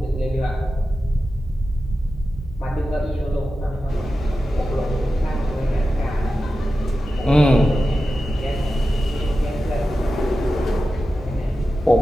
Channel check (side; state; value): both; normal; correlation 0.92